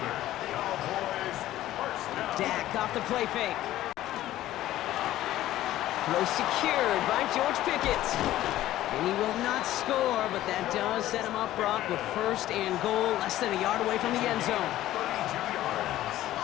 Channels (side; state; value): right; quieter; 14.3 dB